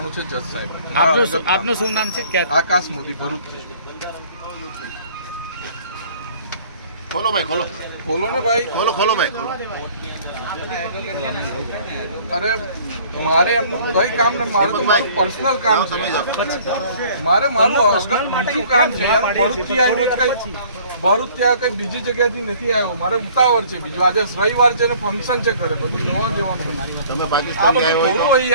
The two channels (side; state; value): both; inverted; correlation -0.54